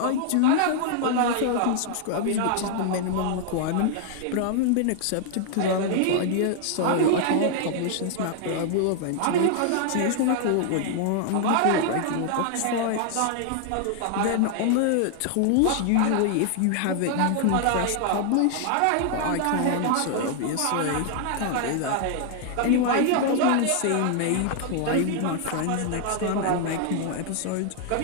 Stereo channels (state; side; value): different; both; correlation 0.00